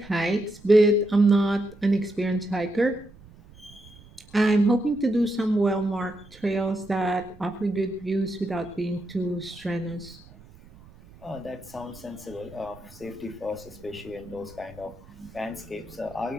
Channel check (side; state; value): right; noise; rumble, 22 dB below the sound